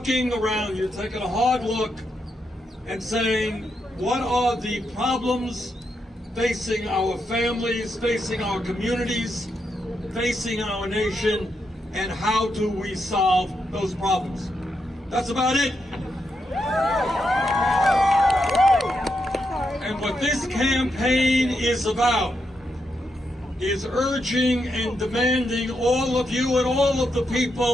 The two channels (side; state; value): both; normal; correlation 0.83